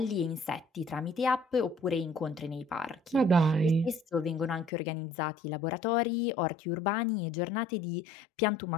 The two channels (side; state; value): right; drops out; at 4.7 s